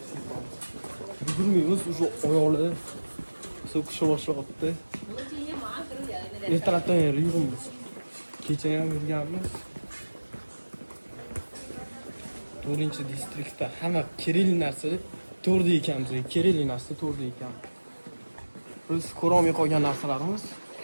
Yugurmaymiz, уже oyoqlar so'kisha boshlayapti. Ertalabdan beri yuribmiz. Kecha ham yurganmiz. 4-distriktda hamma kerakli narsa 4da ekanmiz. Kerakli narsa 4da ekan. Biz ko'rolmay qolgan narsalarimiz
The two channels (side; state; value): both; inverted; correlation -1.00